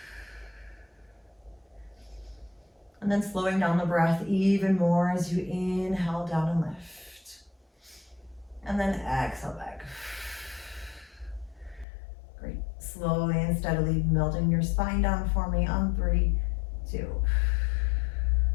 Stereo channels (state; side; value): drops out; right; at 11.9 s